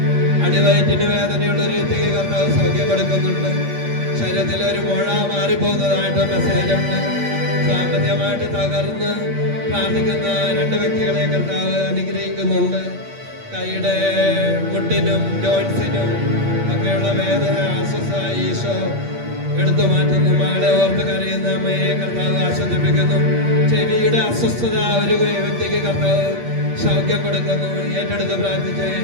അടിവയറ്റിന് വേദനയുള്ള ഒരു വ്യക്തിക്ക് കർത്താവ് സൗഖ്യം കൊടുക്കുന്നുണ്ട്. ശരീരത്തിൽ ഒരു മുഴ മാറിപ്പോകുന്നതായിട്ട് മെസ്സേജ് ഉണ്ട്. സാമ്പത്തികമായിട്ട് തകർന്ന് പ്രാർത്ഥിക്കുന്ന രണ്ട് വ്യക്തികളെ കർത്താവ് അനുഗ്രഹിക്കുന്നുണ്ട്. കൈയുടെ മുട്ടിനും ജോയിൻസിനും ഒക്കെയുള്ള വേദന അസ്വസ്ഥ ഈശോ എടുത്തു മാറ്റുന്നു. മകളെ ഓർത്ത് കരയുന്ന അമ്മയെ കർത്താവ് ആശ്വസിപ്പിക്കുന്നു. ചെവിയുടെ അസ്വസ്ഥത ഒരു വ്യക്തിക്ക് കർത്താവ് സൗഖ്യം കൊടുക്കുന്നു. ഏറ്റെടുത്ത് പ്രാർത്ഥിച്ച്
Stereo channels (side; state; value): left; late; 8.5 ms